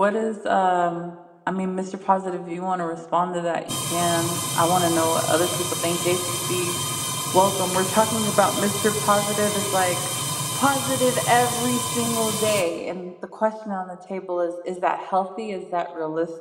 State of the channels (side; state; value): both; identical; correlation 1.00